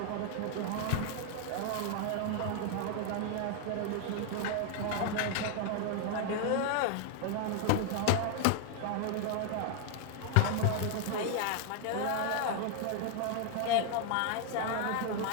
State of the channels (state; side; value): different; both; correlation 0.00